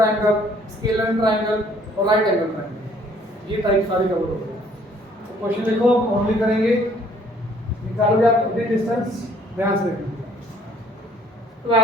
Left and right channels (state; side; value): normal; both; correlation 0.60